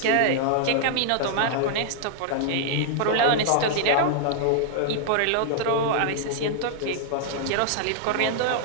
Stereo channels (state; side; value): different; both; correlation -0.01